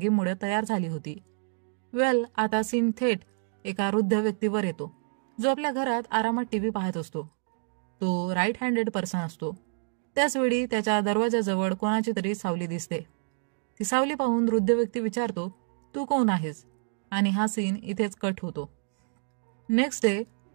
तयार झाली होती. आता सीन थेट एका वृद्ध व्यक्तीवर येतो, जो आपल्या घरात आरामात टीव्ही पाहत असतो. तो राईट हँडेड पर्सन असतो. त्याचवेळी त्याच्या दरवाजाजवळ कोणाची तरी सावली दिसते. ती सावली पाहून वृद्ध व्यक्ती विचारतो, तू कोण आहेस? आणि हा सीन इथेच कट होतो. नेक्स्ट डे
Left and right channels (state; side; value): silent; left; digital silence